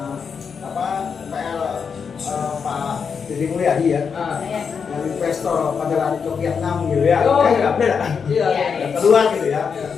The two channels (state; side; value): quieter; right; 6.2 dB